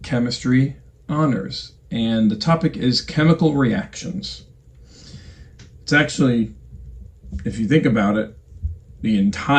chemistry honors, and the topic is chemical reactions. It's actually, if you think about it, the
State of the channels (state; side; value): identical; both; correlation 1.00